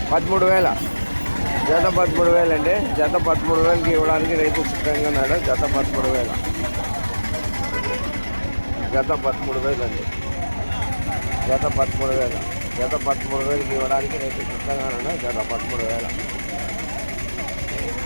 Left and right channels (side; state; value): both; inverted; correlation -1.00